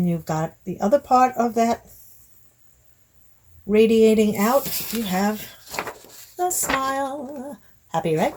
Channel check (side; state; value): both; identical; correlation 1.00